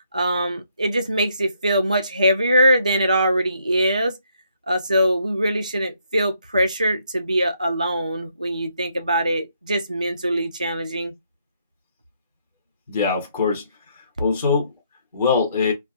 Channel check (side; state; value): both; inverted; correlation -0.72